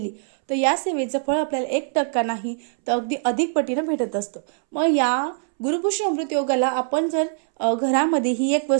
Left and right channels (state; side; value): silent; left; 64 dB below the other